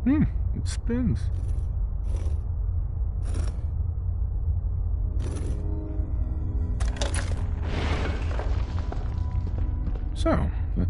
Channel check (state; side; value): identical; both; correlation 1.00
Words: It spins. So,